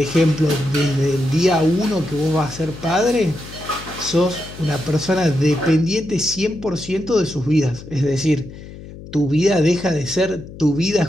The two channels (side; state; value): left; noise; hum, 15 dB below the sound